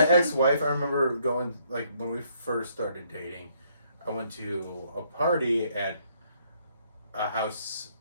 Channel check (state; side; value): inverted; both; correlation -0.69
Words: ex-wife, I remember going, like, when we first started dating, I went to a party at a house,